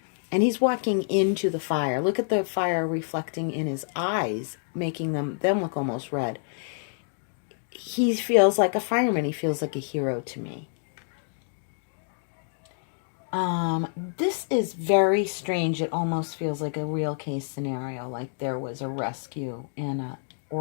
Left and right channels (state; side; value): silent; right; digital silence